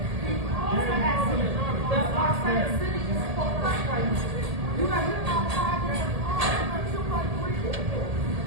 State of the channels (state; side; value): late; left; 1.8 ms